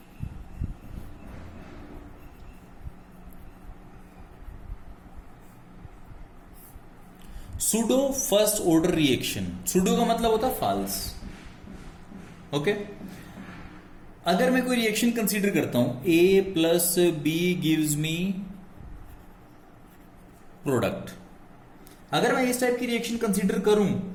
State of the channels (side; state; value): both; identical; correlation 1.00